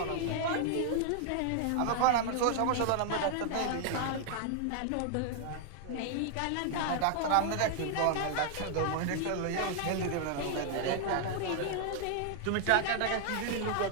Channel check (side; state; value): both; different; correlation 0.00